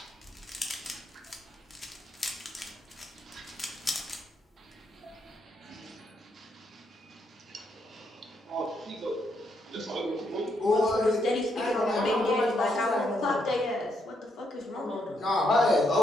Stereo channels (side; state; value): both; normal; correlation 0.77